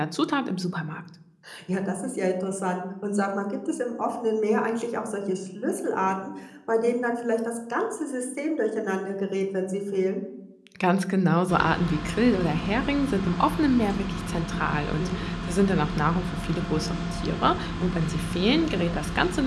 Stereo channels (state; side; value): identical; both; correlation 1.00